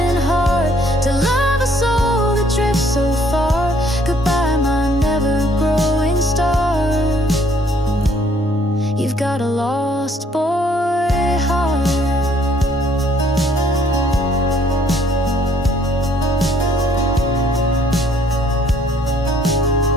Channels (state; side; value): normal; both; correlation 0.63